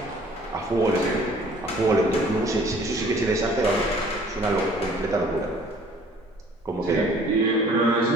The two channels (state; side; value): normal; both; correlation 0.54